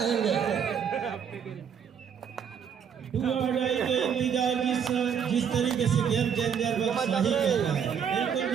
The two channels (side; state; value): left; quieter; 7.7 dB